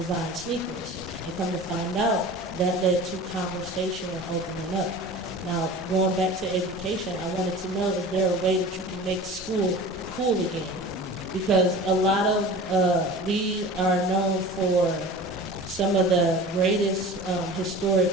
sneakers. And come to find out, that led to conversation and opening up. Now, going back to education, I wanted to know, is there a way that you can make school cool again? Because a lot of, we are known for some of the greatest historic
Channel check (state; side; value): normal; both; correlation 0.38